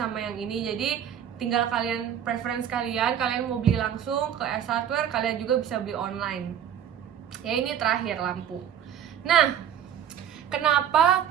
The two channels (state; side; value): quieter; left; 9.5 dB